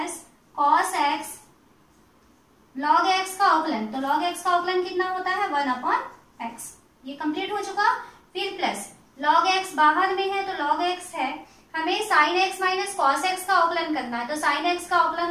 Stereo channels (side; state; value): both; identical; correlation 1.00